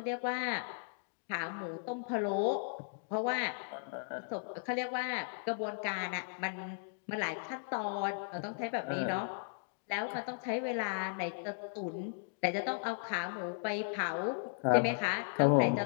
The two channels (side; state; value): right; silent; digital silence